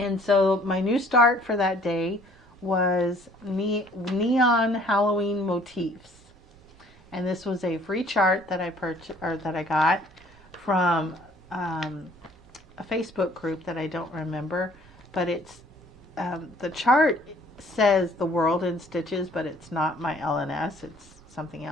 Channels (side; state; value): both; normal; correlation 0.57